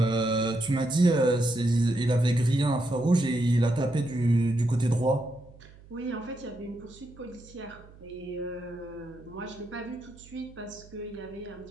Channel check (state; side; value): noise; right; hum, 22 dB below the sound